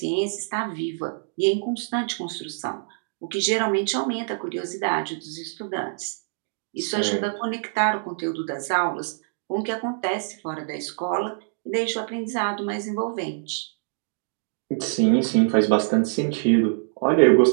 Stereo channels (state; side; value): silent; left; digital silence